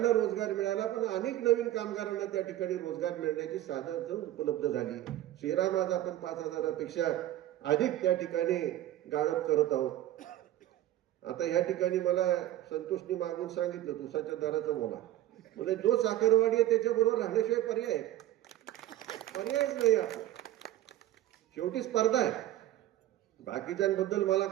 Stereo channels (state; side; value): quieter; left; 13.7 dB